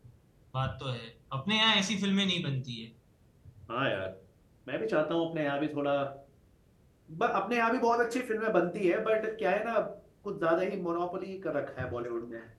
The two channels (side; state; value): both; identical; correlation 1.00